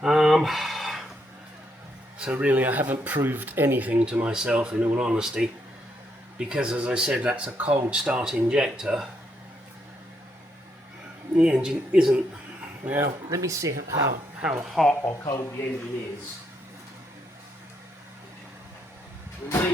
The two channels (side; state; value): both; normal; correlation 0.76